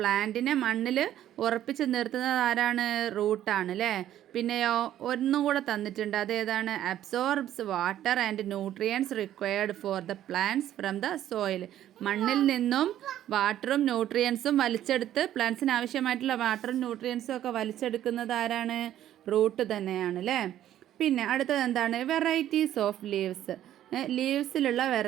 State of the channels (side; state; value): left; quieter; 12.0 dB